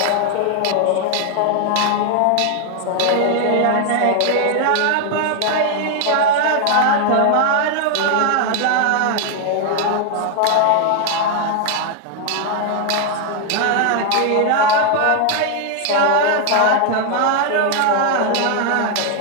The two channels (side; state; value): both; different; correlation 0.00